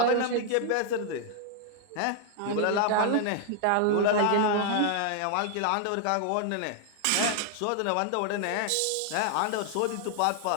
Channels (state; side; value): different; both; correlation 0.00